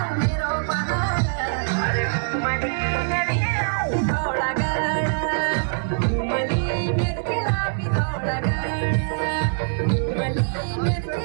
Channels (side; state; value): left; silent; 63 dB below the other